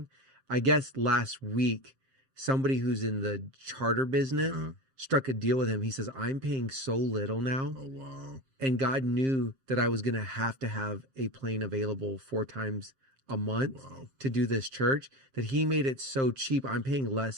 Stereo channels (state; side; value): late; left; 7.5 ms